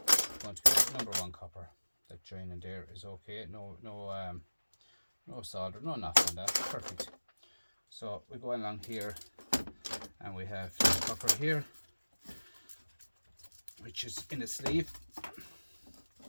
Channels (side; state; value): both; inverted; correlation -1.00